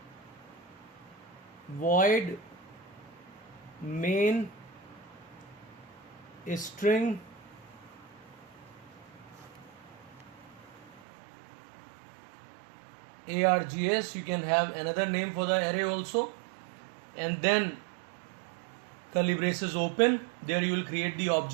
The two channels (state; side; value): drops out; left; at 11.0 s